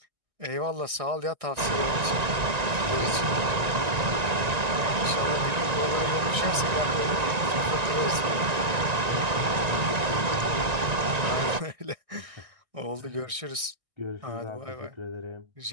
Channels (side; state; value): left; late; 1.9 ms